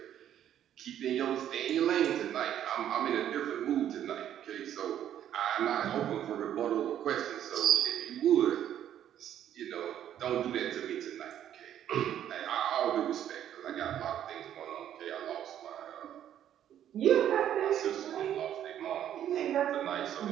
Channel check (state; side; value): quieter; left; 10.7 dB